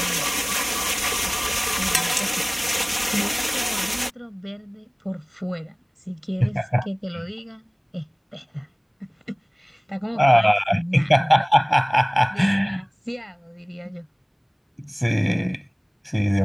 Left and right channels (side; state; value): both; identical; correlation 1.00